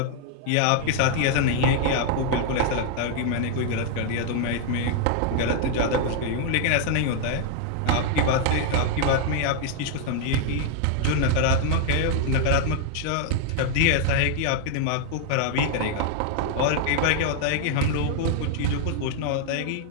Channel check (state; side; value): different; both; correlation -0.01